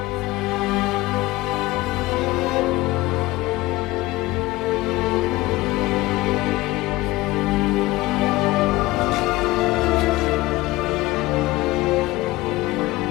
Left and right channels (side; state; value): right; quieter; 19.5 dB